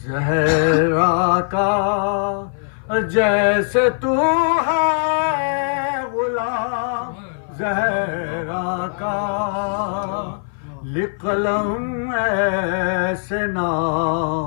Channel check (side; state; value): right; silent; 55 dB below the other